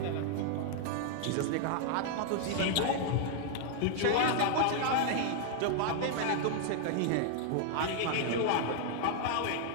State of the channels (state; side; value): different; both; correlation 0.00